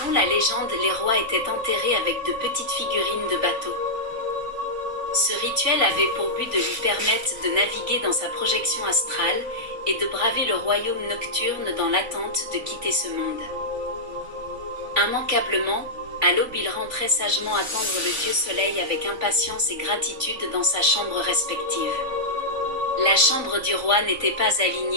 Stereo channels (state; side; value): late; left; 3.9 ms